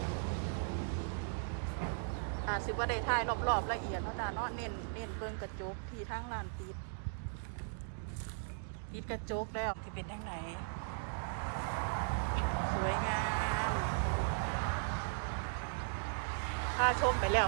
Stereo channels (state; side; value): silent; left; digital silence